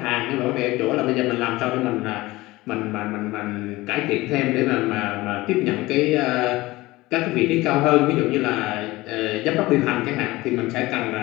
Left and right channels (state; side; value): quieter; right; 19.6 dB